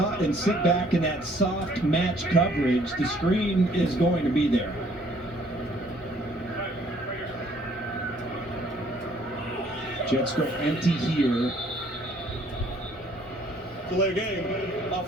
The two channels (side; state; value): both; normal; correlation 0.61